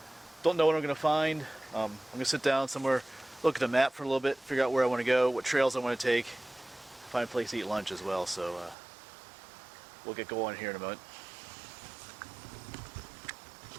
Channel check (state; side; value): drops out; left; at 8.8 s